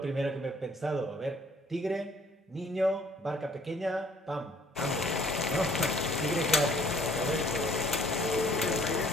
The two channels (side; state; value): both; normal; correlation 0.59